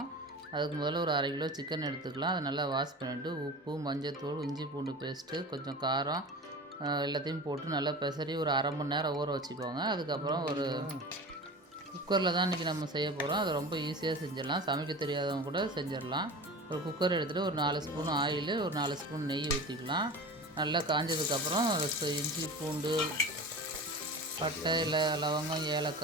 அதுக்கு முதல்ல ஒரு 1/2 கிலோ சிக்கன் எடுத்துக்கலாம். அதை நல்லா வாஷ் பண்ணிவிட்டு உப்பு, மஞ்சத்தூள், இஞ்சி பூண்டு பேஸ்ட்டு, கொஞ்சம் காரம் எல்லாத்தையும் போட்டு நல்லா பெசரி ஒரு 1/2 மணி நேரம் ஊற வச்சுக்கோங்க. அதுக்கப்புறம் ஒரு குக்கரில் தான் இன்றைக்கி நம்ம செய்ய போகிறோம். அதை ரொம்ப ஈஸியாக செஞ்சிடலாம். சமைக்க தெரியாதவங்க கூட செஞ்சிடலாம். ஒரு குக்கர் எடுத்துகிட்டு ஒரு 4 ஸ்பூன் ஆயில், ஒரு 4 ஸ்பூன் நெய் ஊற்றிக்கலாம். நல்லா காஞ்சதுக்கப்புறம் இஞ்சி பூண்டு, பட்டை, இலை, லவங்கம்,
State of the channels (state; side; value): normal; both; correlation 0.34